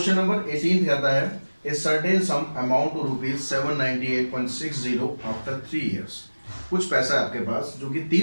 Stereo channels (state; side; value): inverted; both; correlation -1.00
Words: नंबर 18 कहता है a certain sum amount to rupees 798.60 after 3 years. कुछ पैसा है आपके पास जो कि